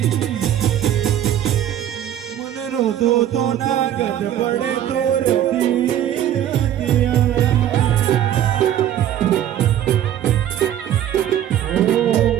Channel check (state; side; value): quieter; left; 11.2 dB